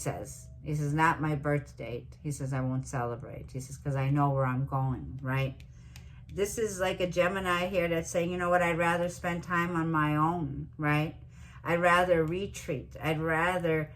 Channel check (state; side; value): identical; both; correlation 1.00